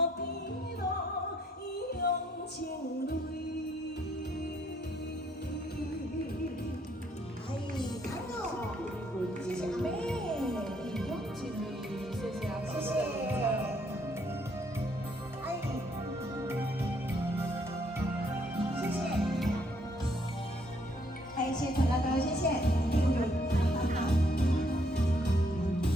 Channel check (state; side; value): normal; both; correlation 0.69